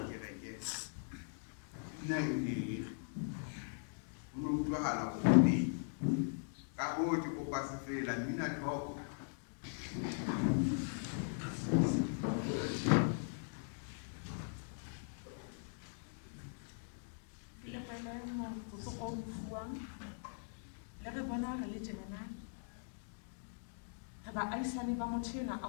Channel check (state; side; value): silent; right; digital silence